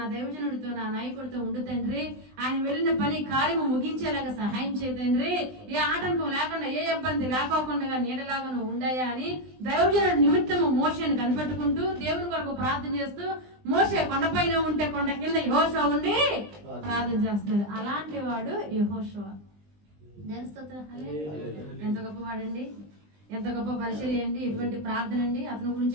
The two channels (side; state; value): left; late; 20 ms